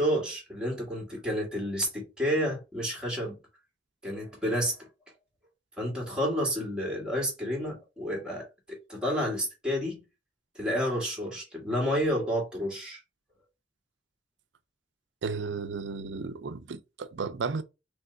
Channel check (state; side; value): normal; both; correlation 0.43